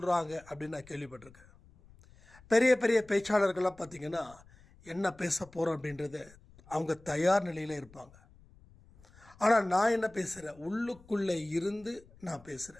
அப்படின்னு நான் கேள்விப்பட்டிருக்கேன். பெரிய பெரிய பேச்சாளர்கள்லாம் பார்த்திங்கன்னா என்ன பேச போகிறோம் அப்படின்றத அவங்க தயார் நிலையில் இருப்பாங்க. ஆனால் நான் என்ன பேசுகிறேன், உள்ளுக்குள்ளே இருந்து நான்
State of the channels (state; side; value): noise; left; rumble, 25 dB below the sound